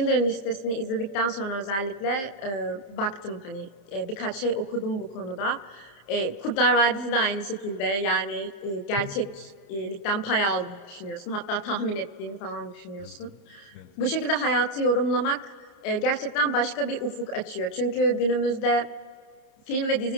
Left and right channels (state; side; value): late; right; 30 ms